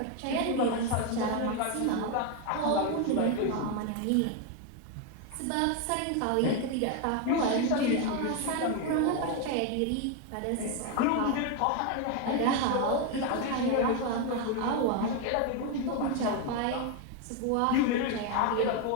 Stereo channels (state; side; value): different; both; correlation 0.01